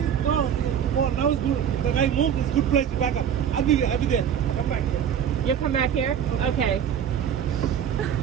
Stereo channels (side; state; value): left; quieter; 8.7 dB